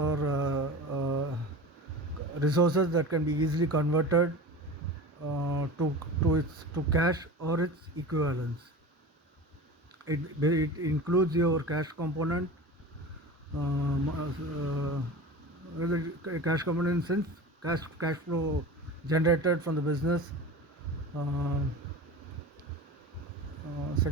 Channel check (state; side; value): normal; both; correlation 0.33